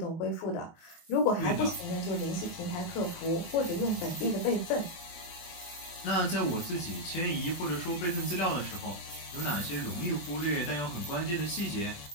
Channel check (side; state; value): right; late; 23 ms